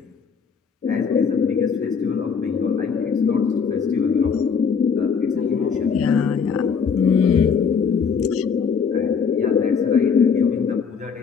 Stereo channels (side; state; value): right; quieter; 6.2 dB